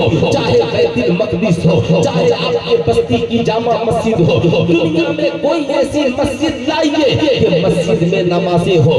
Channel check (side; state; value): both; identical; correlation 1.00